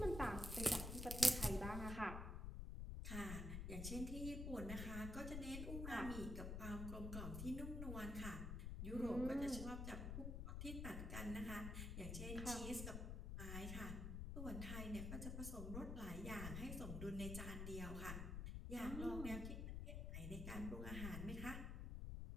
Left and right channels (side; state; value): left; noise; rumble, 3 dB below the sound